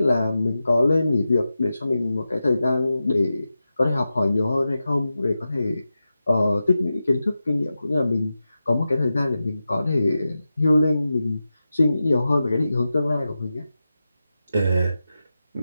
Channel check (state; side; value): inverted; both; correlation -0.92